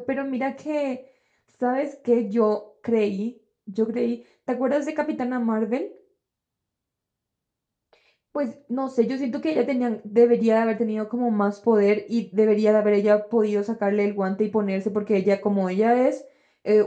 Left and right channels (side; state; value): both; identical; correlation 1.00